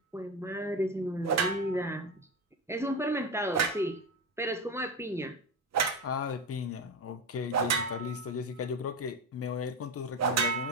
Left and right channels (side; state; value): both; normal; correlation 0.18